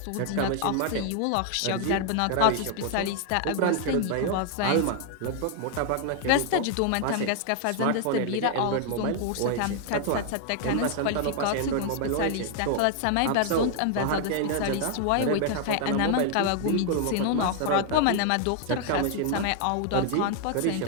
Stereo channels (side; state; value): both; different; correlation 0.00